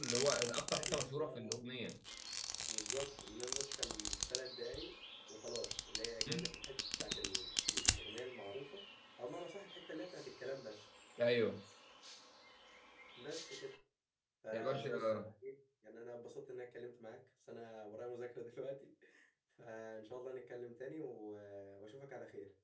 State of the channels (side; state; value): both; identical; correlation 1.00